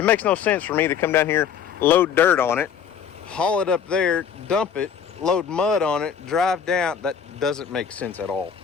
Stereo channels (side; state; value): right; quieter; 7.6 dB